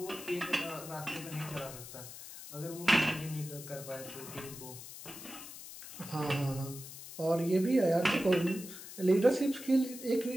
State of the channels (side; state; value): left; noise; hiss, 13 dB below the sound